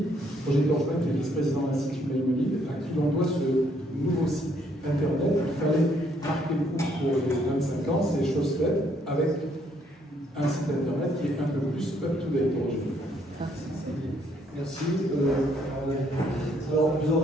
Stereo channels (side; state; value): both; normal; correlation 0.69